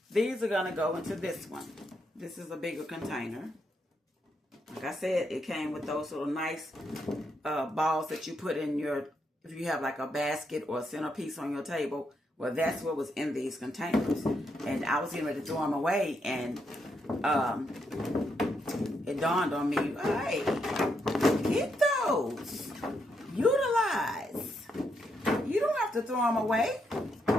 these are going to go into this one. This is a bigger container. Like I said, it came with those little nice balls that you put in if you have like a basket or a centerpiece on your table. Well, that's what was in these containers. And I was getting ready to throw them away. And it dawned on me, hey, get those. Utilize. You don't have to throw them away.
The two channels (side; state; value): both; normal; correlation 0.79